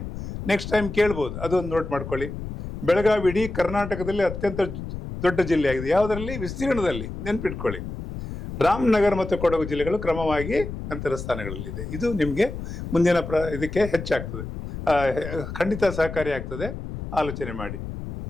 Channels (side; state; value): left; noise; rumble, 8 dB below the sound